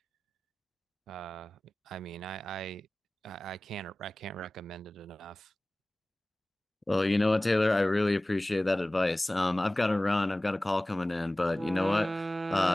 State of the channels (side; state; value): both; normal; correlation 0.98